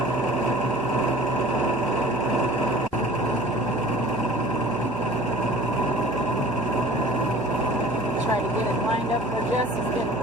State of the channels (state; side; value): normal; both; correlation 0.44